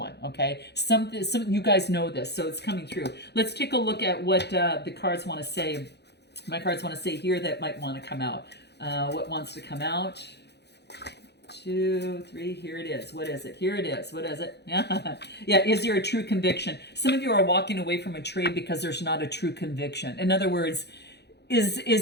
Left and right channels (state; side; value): late; right; 0.49 ms